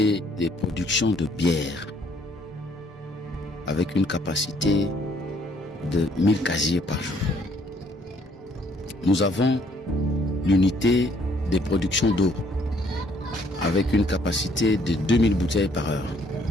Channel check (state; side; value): normal; both; correlation 0.64